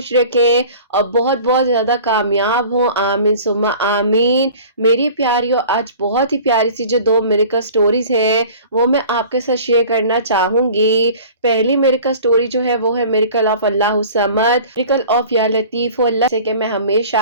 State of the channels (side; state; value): both; inverted; correlation -0.44